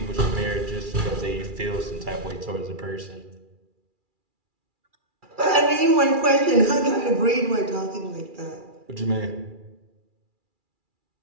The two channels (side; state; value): left; late; 2.4 ms